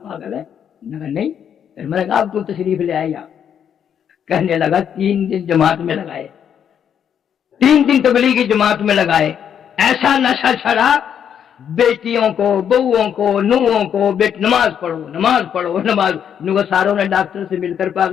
ہے؟ میں نے کہا نہیں۔ پھر میں نے کہا آپ کو تشریف لے آئے یہاں، کہنے لگا 3 دن جماعت میں لگائے، 3 دن تبلیغی جماعت میں لگائے، ایسا نشہ چھڑا، بیٹیوں کو، بہوؤں کو، نوہوں کو، نماز پڑھو نماز پڑھو نماز، نو ساروں نے ڈاکٹر سے مل کر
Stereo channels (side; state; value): right; quieter; 8.6 dB